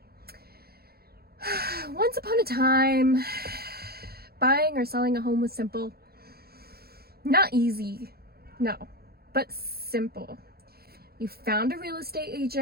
Once upon a time, buying or selling a home was simple. Not easy, no, but simple. You found a real estate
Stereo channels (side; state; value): left; late; 0.45 ms